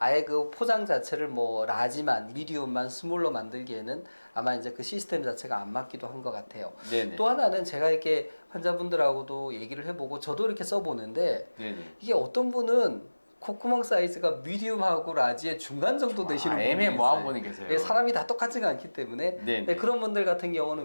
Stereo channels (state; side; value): inverted; both; correlation -1.00